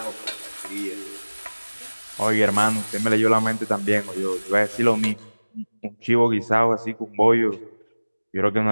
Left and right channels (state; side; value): inverted; both; correlation -1.00